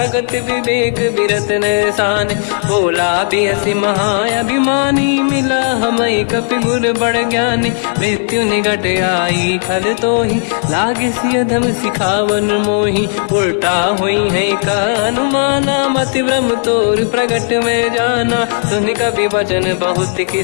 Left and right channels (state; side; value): silent; right; digital silence